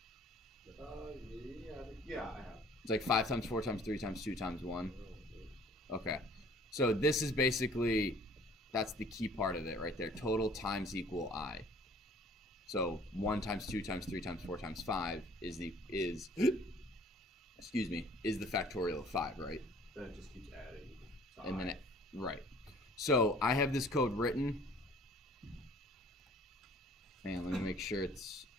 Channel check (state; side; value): normal; both; correlation 0.53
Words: Yeah, I have. It's like 5 times 4 times 3 times 2 times 1. Okay. So this is basically, that's the key part of it right there. Total times equal I. So 1 times 2 times 3 times 4 times 5 is the factorial of 5, right? Then it just keeps adding. And then right. So I have this code written. Man, let me make sure it's